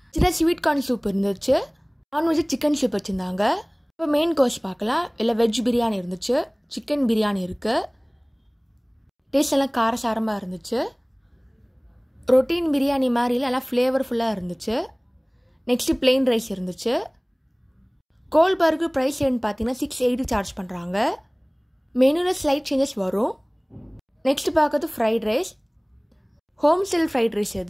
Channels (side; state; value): both; identical; correlation 1.00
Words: சில ஸ்வீட் கார்ன் சூப் இருந்துச்சு, நான்வெஜ் சிக்கன் சூப் வச்சுருந்தாங்க. இப்போ மெயின் கோர்ஸ் பார்க்கலாம். இல்லை வெஜ் பிரியாணி இருந்துச்சு, சிக்கன் பிரியாணி இருக்குது. டேஸ்ட் எல்லாம் காரசாரமாக இருந்துச்சு. ரொட்டீன் பிரியாணி மாதிரி இல்லை, எல்லாம் ஃப்ளேவர்ஃபுல்லாக இருந்துச்சு. நெக்ஸ்ட்டு பிளெயின் ரைஸ் இருந்துச்சு. கோல் பார்க்கு ப்ரைஸ் என்னன்னு பார்த்தீங்கன்னா 680 சார்ஜ் பண்ணுறாங்க. மெனுவில் ஸ்லைட் சேஞ்சஸ் வரும். நெக்ஸ்ட் பார்க்கறது fried rice, home style fried rice.